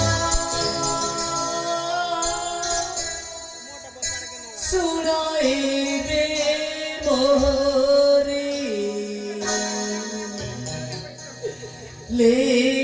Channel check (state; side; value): identical; both; correlation 1.00